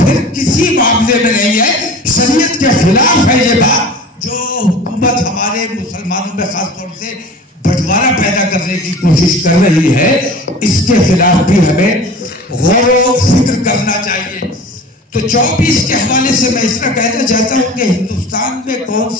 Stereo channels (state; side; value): normal; both; correlation 0.39